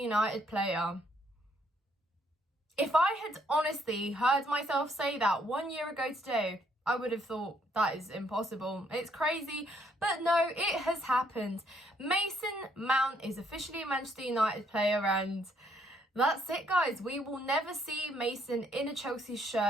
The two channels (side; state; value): both; normal; correlation 0.70